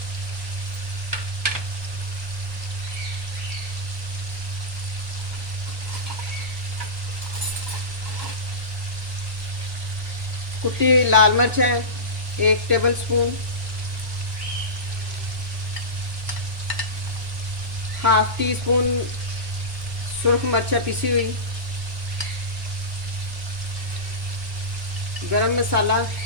कुटी हुई लाल मिर्च है 1 tablespoon. Half teaspoon सुरख मिर्च पिसी हुई। गरम मसाला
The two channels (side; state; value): left; late; 1.3 ms